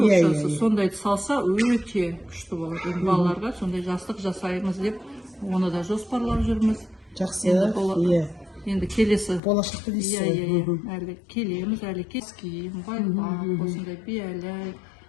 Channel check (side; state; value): right; drops out; at 9.4 s